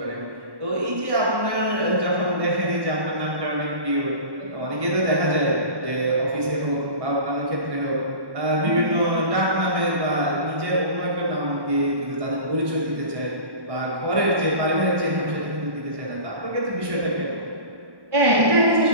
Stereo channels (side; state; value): left; late; 1.1 ms